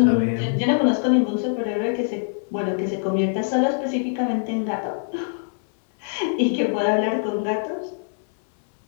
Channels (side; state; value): right; silent; digital silence